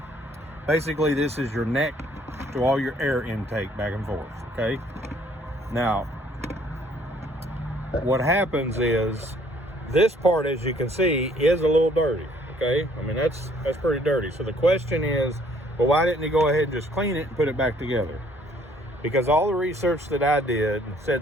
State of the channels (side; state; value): both; normal; correlation 0.62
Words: Basically, this is your neck to all your air intake back and forth, okay? Now, what happens is, this part, as you can see, is a little dirty, okay? I mean, that's pretty dirty. So the question is, well, why didn't he go ahead and just clean it and put it back together? Because all the research that I did